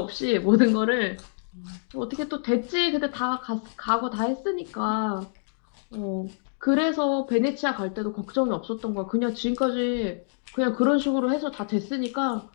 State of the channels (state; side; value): silent; right; digital silence